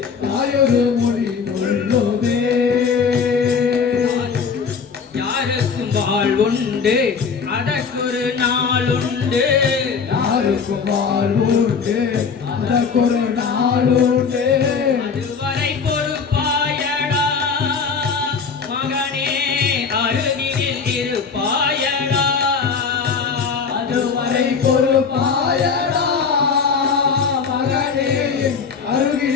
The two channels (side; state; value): right; quieter; 5.7 dB